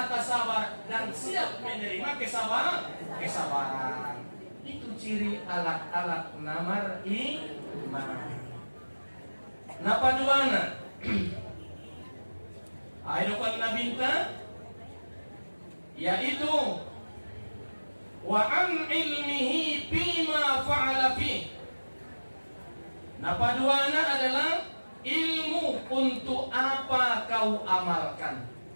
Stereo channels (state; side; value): inverted; both; correlation -1.00